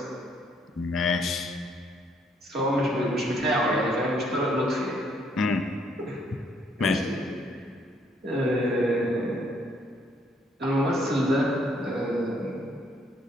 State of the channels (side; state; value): both; normal; correlation 0.68